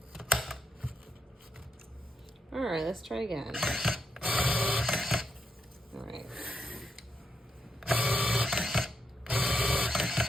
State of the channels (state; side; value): normal; both; correlation 0.82